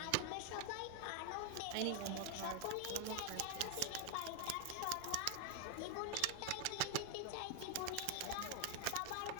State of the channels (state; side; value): different; both; correlation 0.00